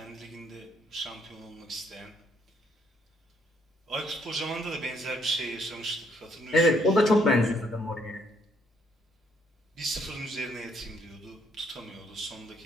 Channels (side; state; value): both; normal; correlation 0.69